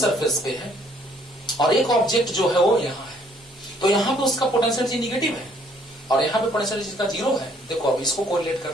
पे है और एक ऑब्जेक्ट जो है वो यहाँ है। तो यहाँ पे उसका पोटेंशियल एनर्जी निगेटिव है और यहाँ पे पोटेंशियल एनर्जी का जीरो है। देखो अब इसको कोरिलेट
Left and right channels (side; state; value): both; normal; correlation 0.63